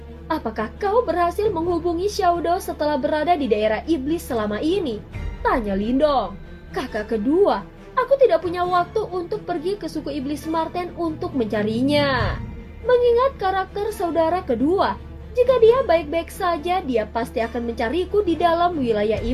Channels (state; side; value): identical; both; correlation 1.00